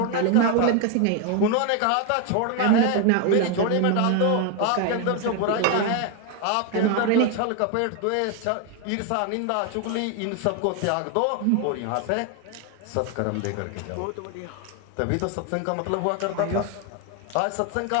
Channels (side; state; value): both; different; correlation 0.01